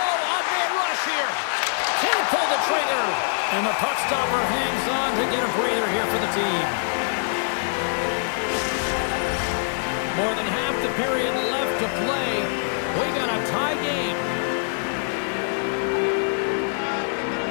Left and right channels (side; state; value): right; silent; 63 dB below the other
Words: rush here. Can't pull the trigger. And the puck stopper hangs on to get a breather here for the team. More than half the period left to play. We got a tie game.